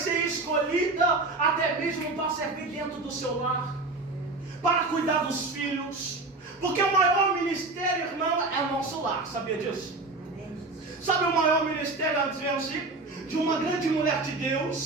escolhida até mesmo para servir dentro do seu lar, para cuidar dos filhos. Porque o maior ministério, irmão, é o nosso lar. Sabia disso? Sabe o maior ministério, de uma grande mulher de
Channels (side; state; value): left; quieter; 3.3 dB